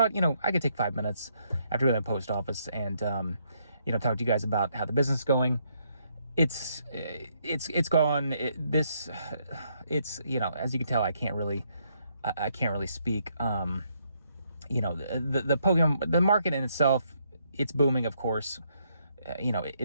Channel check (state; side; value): inverted; both; correlation -0.74